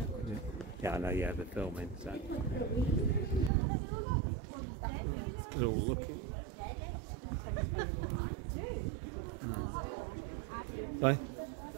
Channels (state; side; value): drops out; left; at 3.5 s